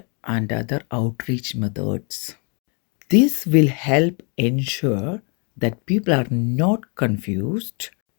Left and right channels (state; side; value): quieter; right; 37.0 dB